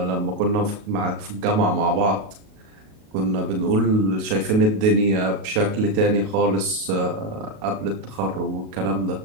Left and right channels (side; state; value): left; late; 37 ms